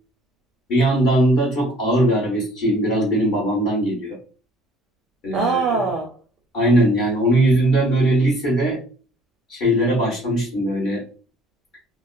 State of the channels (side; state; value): both; normal; correlation 0.57